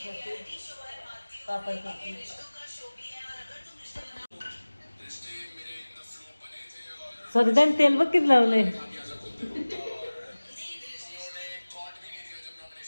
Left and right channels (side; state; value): both; inverted; correlation -1.00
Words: पापड करते. स्वतः त्याने तेल बघ किती लावलंय.